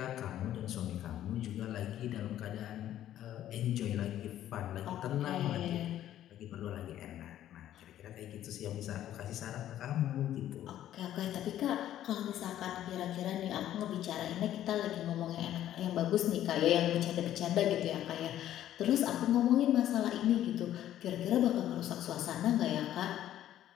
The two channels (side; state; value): right; quieter; 12.1 dB